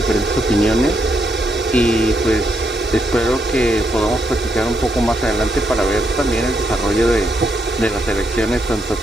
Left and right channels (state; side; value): normal; both; correlation 0.79